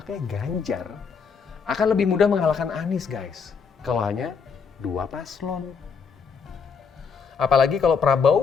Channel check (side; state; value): right; quieter; 5.9 dB